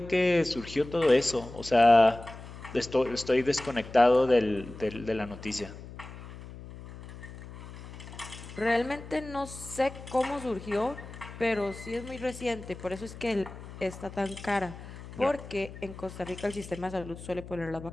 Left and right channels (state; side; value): noise; left; hum, 14 dB below the sound